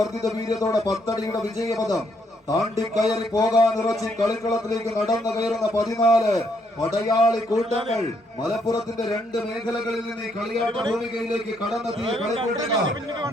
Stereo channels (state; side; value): normal; both; correlation 0.73